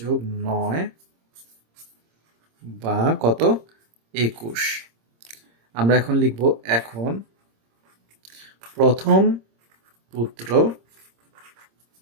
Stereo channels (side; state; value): left; late; 26 ms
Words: 9 বা কত? 21। আমরা এখন লিখবো, এখন প্রথম পুত্র